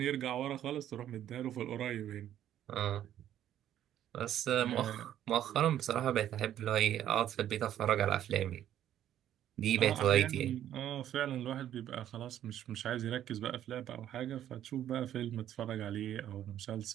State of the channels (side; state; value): left; quieter; 11.3 dB